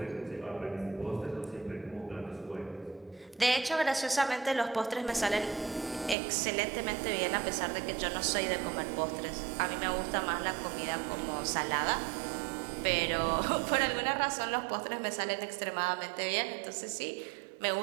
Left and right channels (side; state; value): left; drops out; at 6.2 s